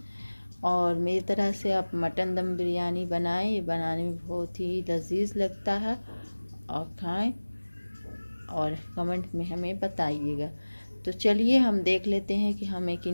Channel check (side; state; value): both; inverted; correlation -1.00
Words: और मेरी तरह से आप मटन दम बिरयानी बनाएं, ये बनाने में बहुत ही लजीज लगता है। और खाएं और कमेंट में हमें बताइएगा। तो चलिए हम देख लेते हैं कि हमें